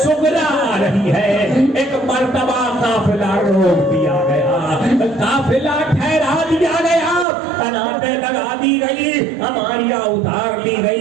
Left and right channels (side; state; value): left; drops out; at 7.2 s